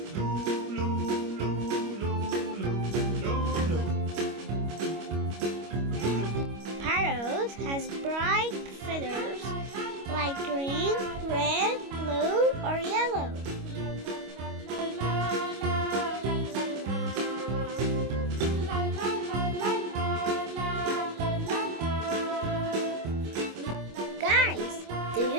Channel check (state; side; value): late; left; 25 ms